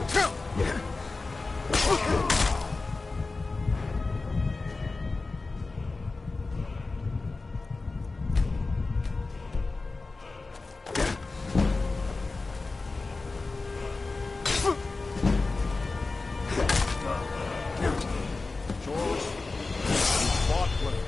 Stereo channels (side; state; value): right; quieter; 3.7 dB